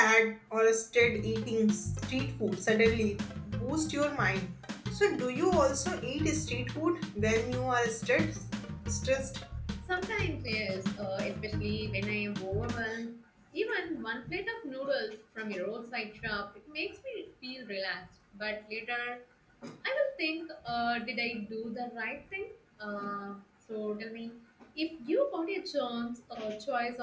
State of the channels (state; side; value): identical; both; correlation 1.00